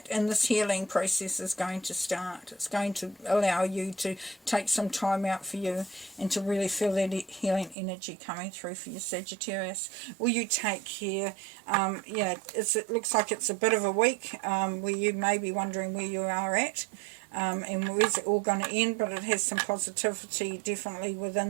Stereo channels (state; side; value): drops out; left; at 7.8 s